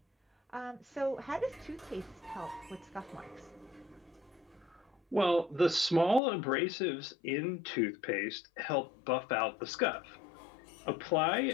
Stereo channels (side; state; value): right; drops out; at 6.2 s